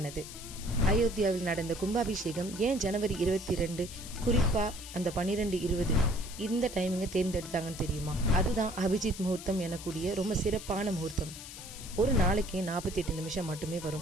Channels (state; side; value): noise; left; hiss, 12 dB below the sound